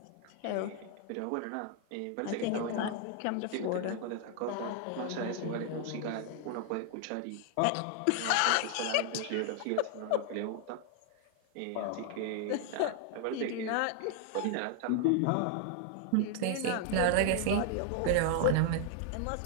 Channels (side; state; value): both; different; correlation 0.00